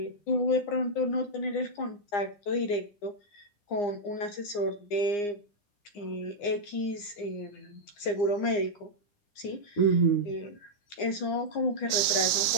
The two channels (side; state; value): right; late; 9.8 ms